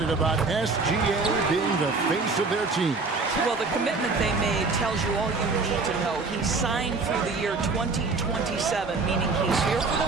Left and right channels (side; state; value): left; quieter; 4.0 dB